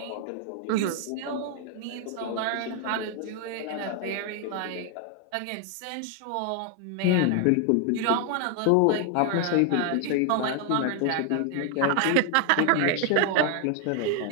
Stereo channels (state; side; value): different; both; correlation 0.00